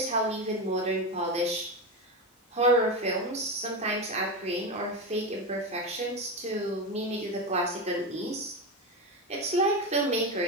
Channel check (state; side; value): normal; both; correlation 0.17